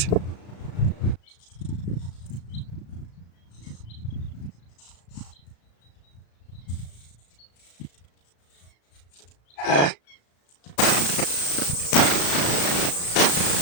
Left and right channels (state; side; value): late; right; 35 ms